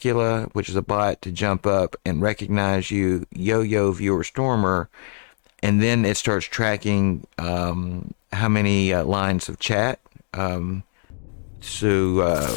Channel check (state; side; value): silent; right; digital silence